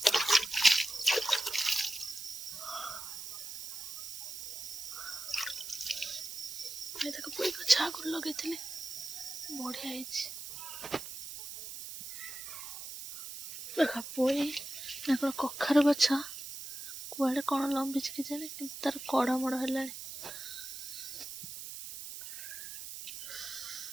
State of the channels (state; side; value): noise; right; hiss, 9 dB below the sound